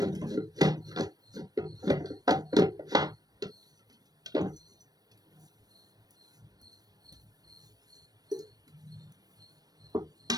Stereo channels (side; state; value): left; late; 0.19 ms